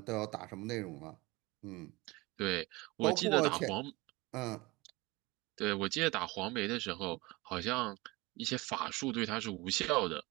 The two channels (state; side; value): quieter; left; 22.9 dB